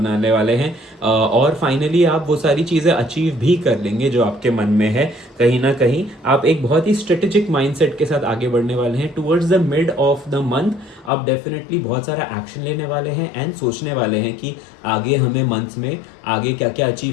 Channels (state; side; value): drops out; right; at 11.1 s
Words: वाले हैं, और फाइनली आप वो सारी चीज़ें अचीव भी कर लेंगे जो आपके मन में है। कहीं ना कहीं आप एक बहुत ही स्ट्रेटेजिक माइंडसेट के साथ आगे बढ़ने वाले हैं। Towards the mid of the month आप डेफिनेटली बहुत सारा एक्शन लेने वाले हैं एंड सोचने वाले हैं कि आगे हमें मंथ्स में आगे क्या क्या